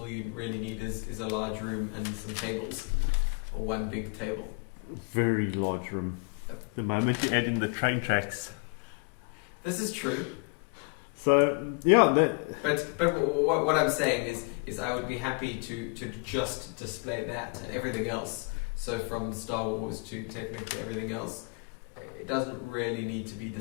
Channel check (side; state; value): right; quieter; 33.8 dB